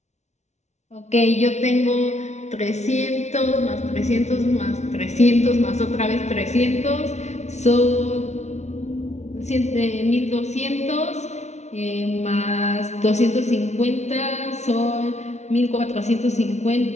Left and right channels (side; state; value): right; late; 0.32 ms